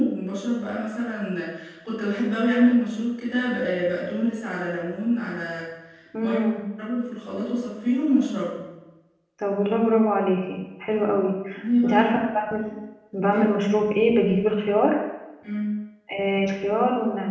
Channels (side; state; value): both; identical; correlation 1.00